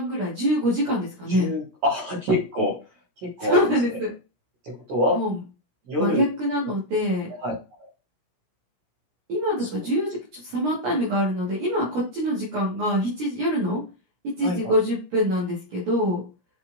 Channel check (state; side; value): late; left; 17 ms